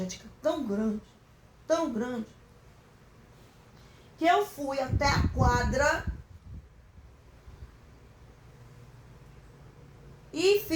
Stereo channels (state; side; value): identical; both; correlation 1.00